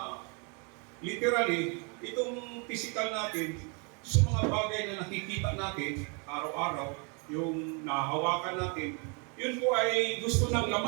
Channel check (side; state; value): left; quieter; 34.7 dB